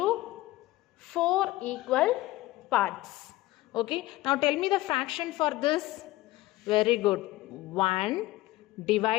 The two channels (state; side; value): quieter; right; 17.9 dB